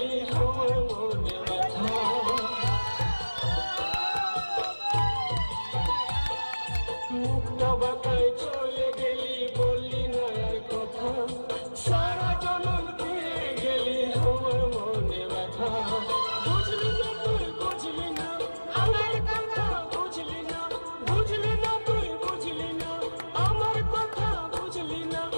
আমার মনে ব্যথা। মুক্তা বাতায় চলে গেলি, বললি না আর কথা, সারা জনম দিয়ে গেলি আমার মনে ব্যথা। বুঝলি না তুই, বুঝলি না আমার কথা, বুঝলি না, বুঝলি না তুই, বুঝলি না আমার কথা, বুঝলি না।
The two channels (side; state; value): both; inverted; correlation -1.00